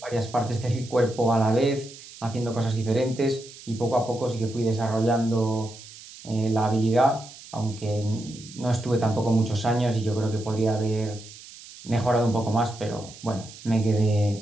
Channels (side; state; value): right; noise; hiss, 18 dB below the sound